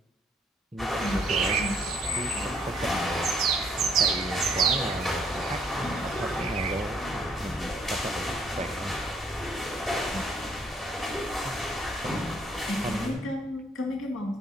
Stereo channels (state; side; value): normal; both; correlation 0.66